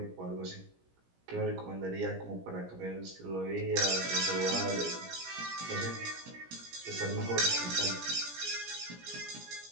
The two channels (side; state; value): left; late; 17 ms